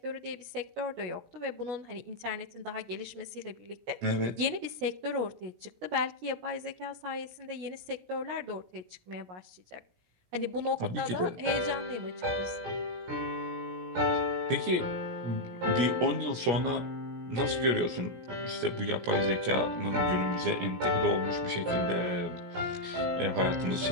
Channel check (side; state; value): left; late; 17 ms